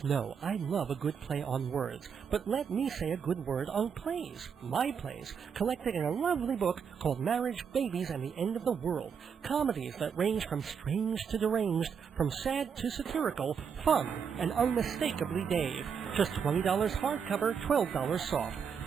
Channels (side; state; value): left; quieter; 6.8 dB